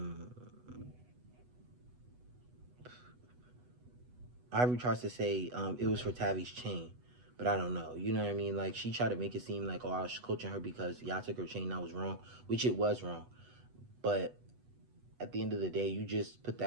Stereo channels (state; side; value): late; left; 8.1 ms